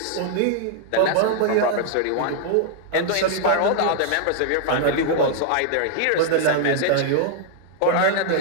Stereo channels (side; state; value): both; different; correlation 0.00